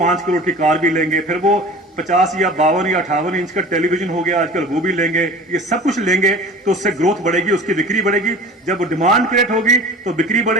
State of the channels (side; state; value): both; normal; correlation 0.40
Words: करोड़ की कार भी लेंगे, फिर वो 50 या 52 या 58 इंच का टेलीविजन हो गया आजकल, वो भी लेंगे। ये सब कुछ लेंगे तो उससे ग्रोथ बढ़ेगी, उसकी बिक्री बढ़ेगी। जब डिमांड क्रिएट होगी तो बिक्री